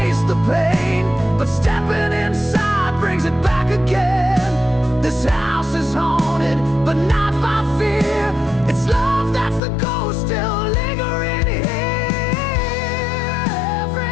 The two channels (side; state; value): right; drops out; at 9.6 s